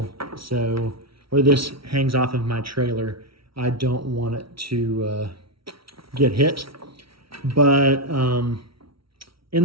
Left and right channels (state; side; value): late; left; 0.75 ms